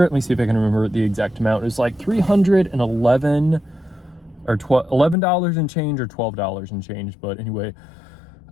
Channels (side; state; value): right; drops out; at 5.2 s